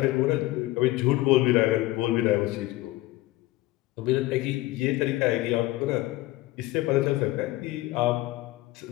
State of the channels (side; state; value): right; quieter; 18.3 dB